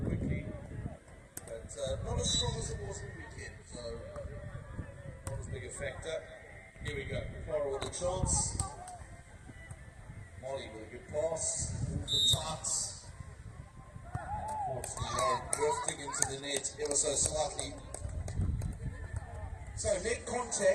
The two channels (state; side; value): identical; both; correlation 1.00